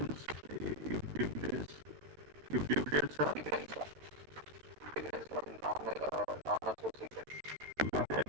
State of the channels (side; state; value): left; late; 13 ms